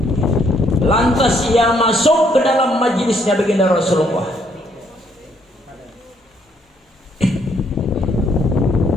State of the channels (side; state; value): both; normal; correlation 0.69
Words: Lantas ia masuk ke dalam majelisnya baginda Rasulullah.